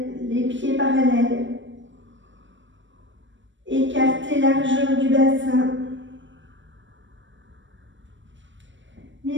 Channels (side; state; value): left; late; 0.54 ms